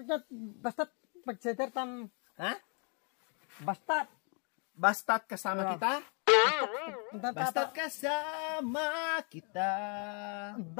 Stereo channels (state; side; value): quieter; right; 38.3 dB